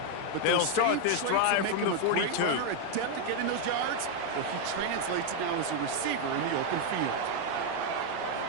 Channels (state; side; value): different; both; correlation 0.01